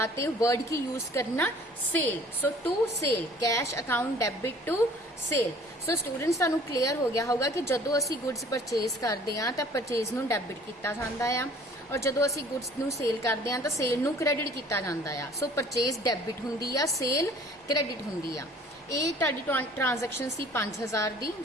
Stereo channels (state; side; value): normal; both; correlation 0.52